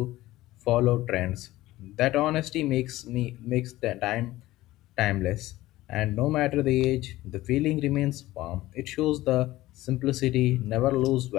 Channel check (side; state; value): right; quieter; 16.9 dB